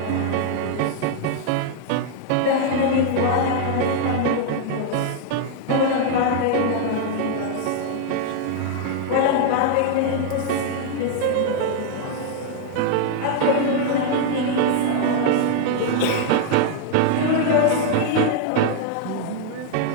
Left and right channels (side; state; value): both; different; correlation 0.00